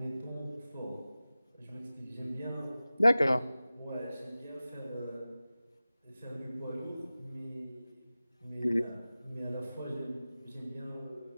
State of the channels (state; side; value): inverted; both; correlation -0.96